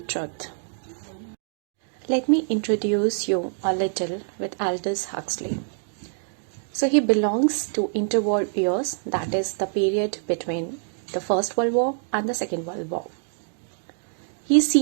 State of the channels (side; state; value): left; silent; digital silence